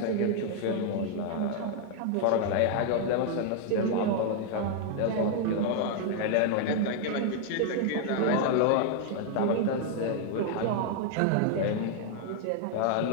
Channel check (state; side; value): different; both; correlation 0.00